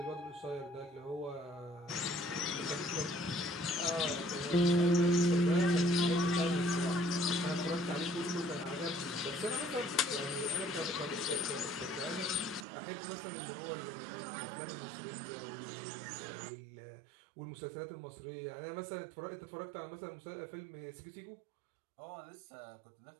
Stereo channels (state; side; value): drops out; left; at 12.7 s